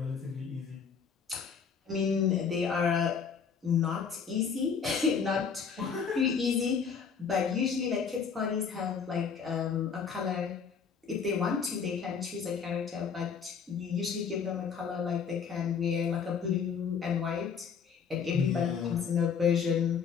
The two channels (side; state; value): right; quieter; 6.4 dB